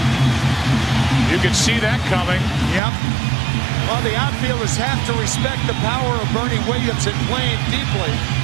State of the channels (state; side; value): drops out; left; at 2.8 s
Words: You could see that coming. Yep. Well, the outfielders have to respect the power of Bernie Williams and playing deeply.